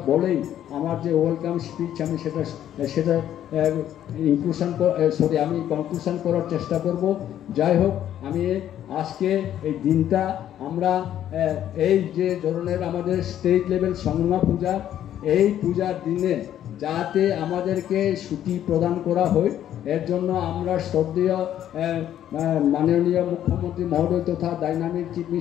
বলেই আমার যে ওয়েলকাম স্পিচ আমি সেটা আমি কনক্লুশন করার চেষ্টা করব। যাই হোক, আমি আজকে এই দিনটা আমরা এই যে ধরনের আমাদের স্টেট লেভেল সংগ্রাম পূজা, এই পূজার দিনে যাতে আমাদেরকে ছুটি প্রদান করা হয়, এর জন্য আমরা শ্রদ্ধেয় মাননীয় মুখ্যমন্ত্রী মহোদয় তথা ডাইনামিক চিফ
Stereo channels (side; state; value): right; quieter; 11.1 dB